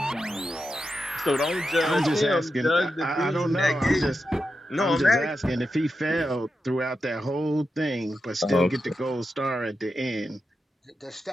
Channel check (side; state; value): both; normal; correlation 0.88